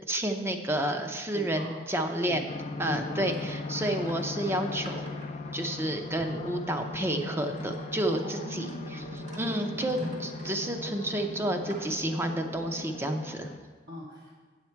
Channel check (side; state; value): both; normal; correlation 0.51